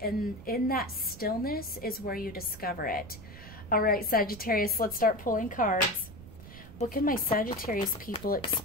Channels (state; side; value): noise; right; rumble, 16 dB below the sound